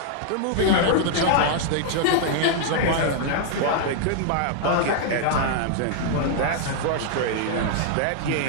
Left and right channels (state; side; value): different; both; correlation -0.01